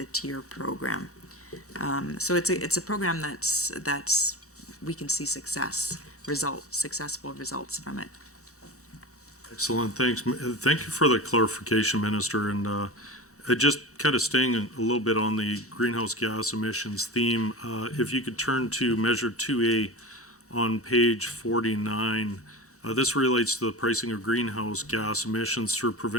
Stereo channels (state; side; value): normal; both; correlation 0.28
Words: tier program. So it's a program that's we can see successful results from it. Excellent, thanks. Thank you for the clarification, Minister. And just kind of staying a little bit on the greenhouse gas emissions theme, if you could turn to Measure 2A on page 49. This relates to the pricing of greenhouse gas emissions through